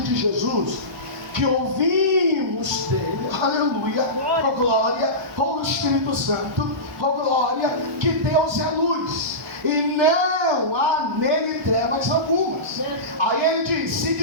de Jesus que ouvimos dele, aleluia, oh glória, oh Espírito Santo, oh glória, que Deus é luz e não há nele trevas algumas. Aí ele diz: se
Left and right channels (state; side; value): normal; both; correlation -0.20